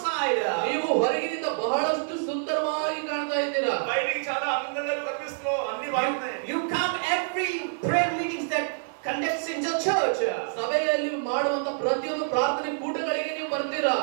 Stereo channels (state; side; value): silent; left; digital silence